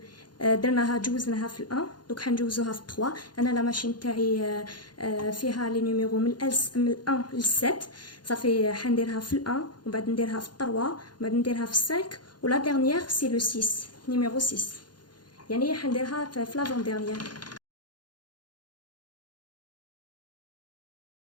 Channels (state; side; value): late; right; 0.71 ms